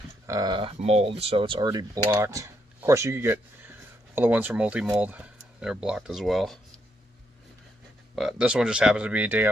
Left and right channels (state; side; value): normal; both; correlation 0.77